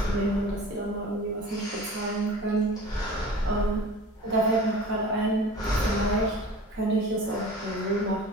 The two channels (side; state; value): both; normal; correlation 0.40